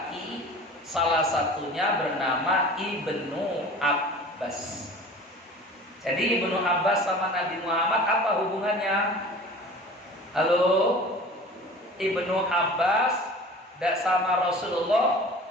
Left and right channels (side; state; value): both; normal; correlation 0.41